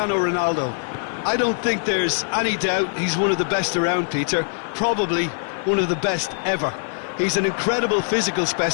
Ronaldo. I don't think there's any doubt he's one of the best around, Peter. Probably one of the best ever. He's an incredible physical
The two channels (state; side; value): silent; right; digital silence